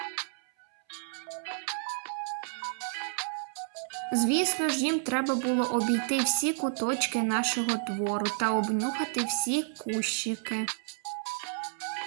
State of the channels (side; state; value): left; silent; 57 dB below the other